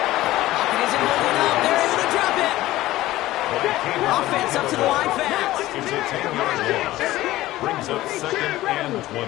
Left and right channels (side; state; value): right; quieter; 16.3 dB